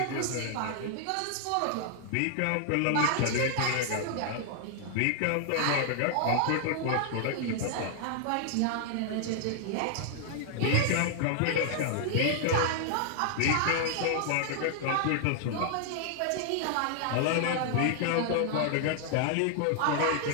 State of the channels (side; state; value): both; different; correlation 0.00